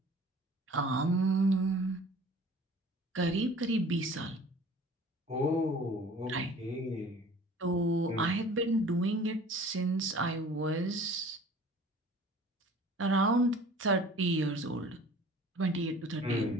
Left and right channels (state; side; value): normal; both; correlation 0.47